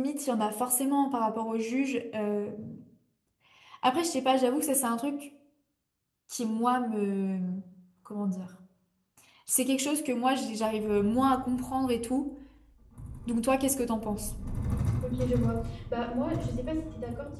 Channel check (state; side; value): identical; both; correlation 1.00